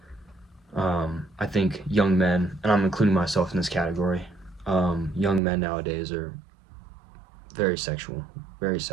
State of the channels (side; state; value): left; drops out; at 5.4 s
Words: I think young men, and I'm including myself in this category, young men nowadays are very sexual,